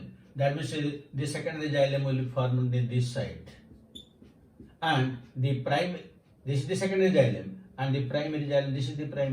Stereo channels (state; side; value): identical; both; correlation 1.00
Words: That means the secondary xylem will be formed on this side, and the this is the secondary xylem, and the primary xylem, this is the